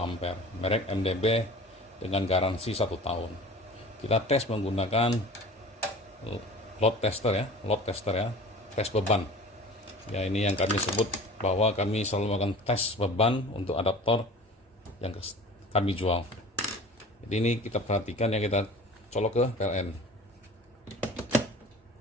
merek MDB dengan garansi 1 tahun. Kita tes menggunakan load tester ya, tes beban. Ya, ini yang kami sebut bahwa kami selalu melakukan tes beban untuk adaptor yang kami jual. Jadi ini kita perhatikan ya, kita colok ke PLN.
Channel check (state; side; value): normal; both; correlation 0.41